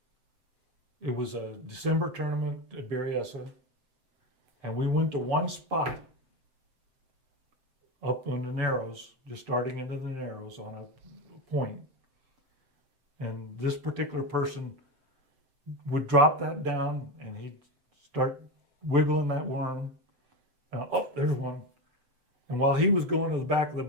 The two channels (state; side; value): late; left; 7.8 ms